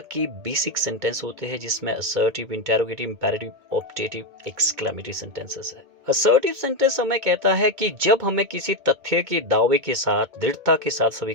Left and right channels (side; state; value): left; late; 2.2 ms